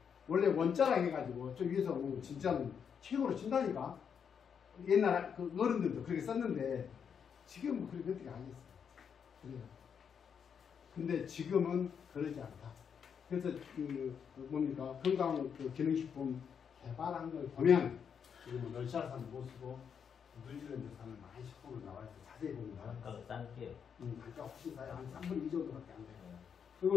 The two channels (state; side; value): quieter; right; 7.2 dB